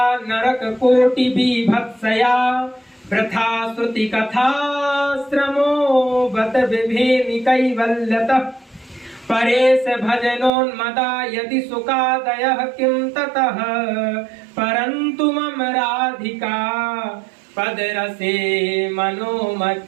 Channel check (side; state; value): left; drops out; at 10.5 s